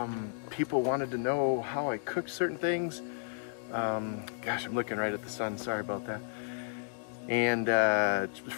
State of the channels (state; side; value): silent; right; digital silence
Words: People wanted to know how I cooked certain things. Gosh, I'm looking right at the sun, sorry about that. And